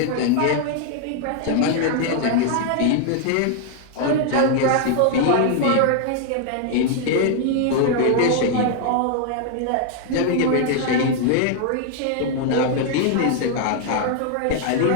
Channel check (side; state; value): both; different; correlation 0.00